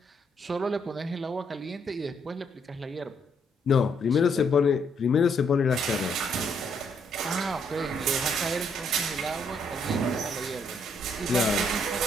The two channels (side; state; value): both; normal; correlation 0.72